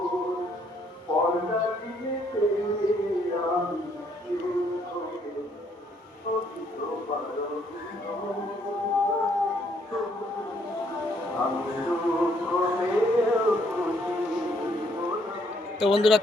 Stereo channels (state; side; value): normal; both; correlation 0.69